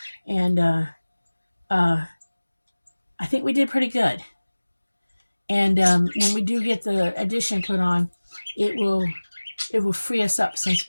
And uh, I think we did pretty good. And when we do get the addition put on, it will it will free us up some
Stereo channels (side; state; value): both; inverted; correlation -1.00